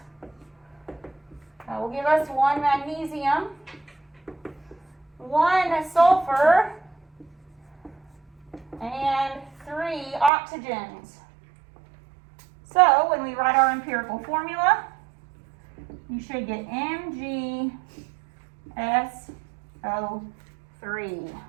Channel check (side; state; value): left; drops out; at 10.3 s